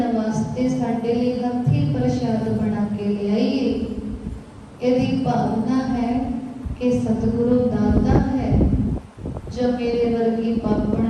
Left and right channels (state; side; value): identical; both; correlation 1.00